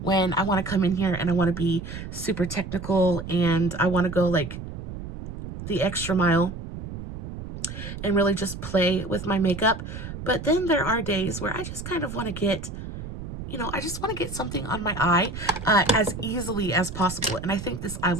I want to come in here and I want to be super technical and I want to go like the extra mile and really just play with my makeup. But then there are days where I just kind of want to get, I just want to get something on my eye as easily as possible. And I think this eye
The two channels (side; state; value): right; noise; rumble, 9 dB below the sound